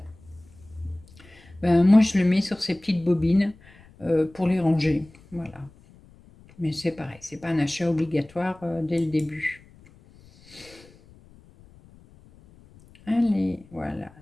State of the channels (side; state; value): left; noise; rumble, 26 dB below the sound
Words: Ben, moi, je le mets sur ces petites bobines pour les ranger. Voilà. Mais c'est pareil, c'est pas un achat obligatoire dès le début. Allez, voilà,